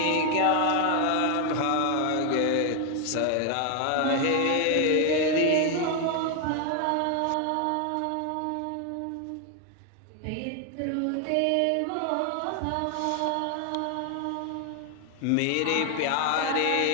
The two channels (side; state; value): both; different; correlation 0.01